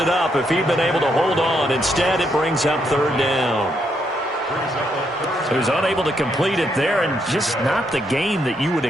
up if he'd been able to hold on. Instead, it brings up 3rd down. He was unable to complete it there, and just not the game that you would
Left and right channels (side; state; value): both; normal; correlation 0.77